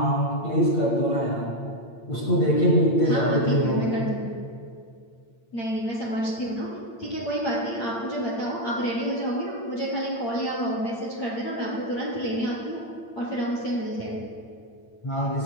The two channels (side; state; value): right; late; 8.8 ms